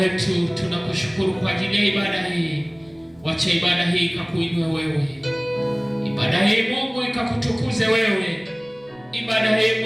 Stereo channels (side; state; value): right; noise; rumble, 28 dB below the sound